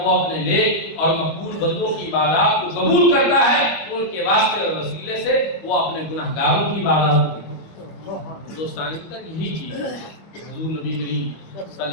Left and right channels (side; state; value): right; late; 25 ms